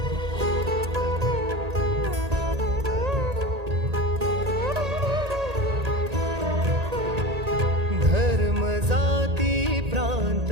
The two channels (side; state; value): left; late; 1.8 ms